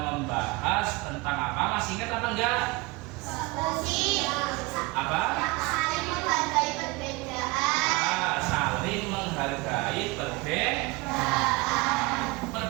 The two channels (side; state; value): left; quieter; 23.8 dB